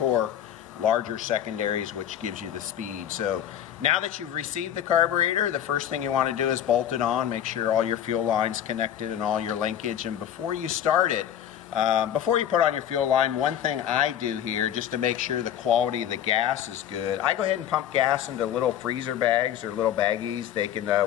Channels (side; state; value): right; quieter; 10.3 dB